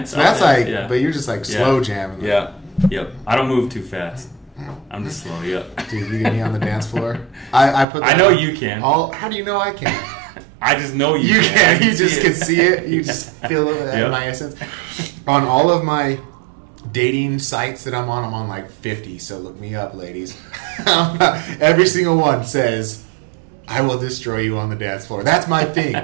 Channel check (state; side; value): drops out; left; at 7.9 s